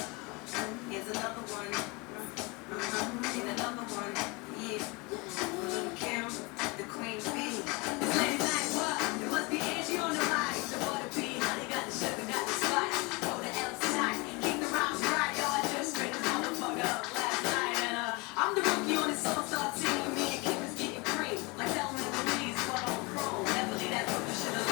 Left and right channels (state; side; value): quieter; right; 27.3 dB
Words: Here's another one. And another one. Yeah. Little Kim, the queen bee. It's late night, what? It must be Angie on the mic. The butter bee, honey got the sugar, got the spice. Go to L tonight. Keep the rhymes right, yo. I just straight the motherfucker up last night. And I'm the rookie on this all-star team. Me and Kim is getting cream. Like Thelma and Louise, but on chrome. Never leave that fucking shit